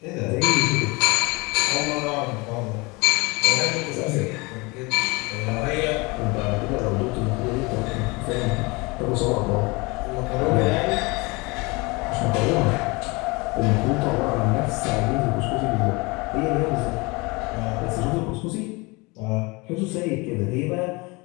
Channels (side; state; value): right; quieter; 26.1 dB